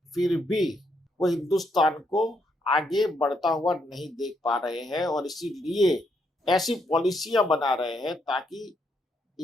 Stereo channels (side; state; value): both; normal; correlation 0.76